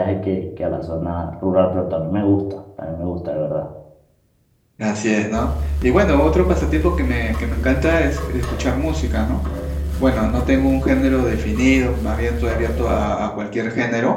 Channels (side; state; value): both; identical; correlation 1.00